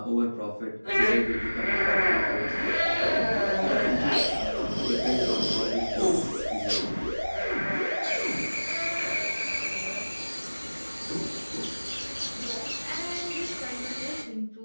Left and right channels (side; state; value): both; inverted; correlation -1.00